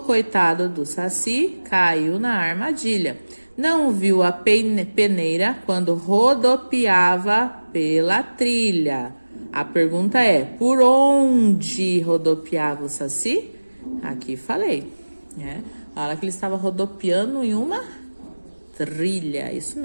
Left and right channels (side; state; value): both; inverted; correlation -1.00